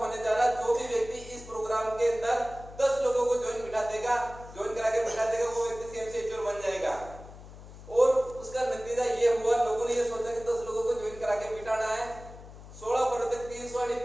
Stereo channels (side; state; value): left; noise; hum, 16 dB below the sound